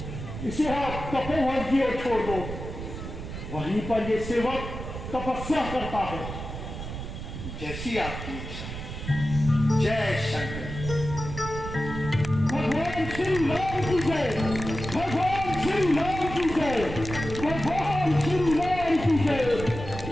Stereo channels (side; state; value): right; noise; rumble, 8 dB below the sound